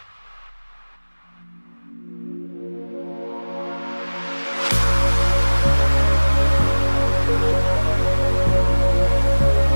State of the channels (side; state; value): both; inverted; correlation -1.00